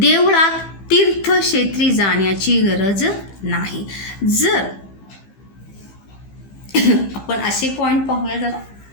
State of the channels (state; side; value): late; right; 15 ms